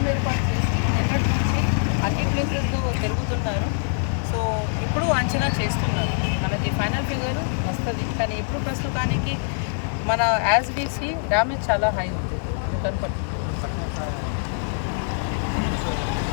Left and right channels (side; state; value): right; silent; digital silence